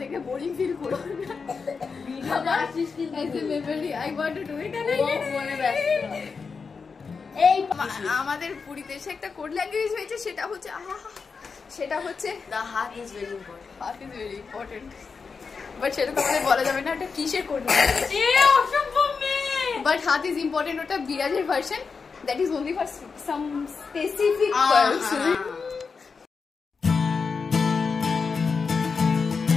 দেখে বোরিং ফিল করো না, ভিডিওটা আসিস কিন্তু ऐसे memory I want to do it and ফোনে ব্যস্ত। এই আমাদের পুরীতে এসে একটা কোড ল্যাঙ্গুয়েজ হয়েছে, সেটা হচ্ছে the heart is very important. Heart is very important. But সেটা তো আমাদের বলা যাবে না এটা কিসের কোড ল্যাঙ্গুয়েজ। অসম্ভব মেয়ে। বাট হার্ট ইজ ইম্পর্টেন্ট ওটা বিরাজের version, that is only for some specific person.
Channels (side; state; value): right; quieter; 5.1 dB